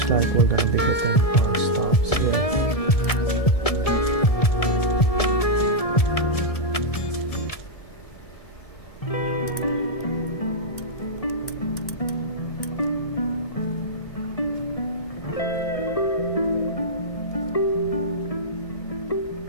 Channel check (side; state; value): right; late; 1.6 ms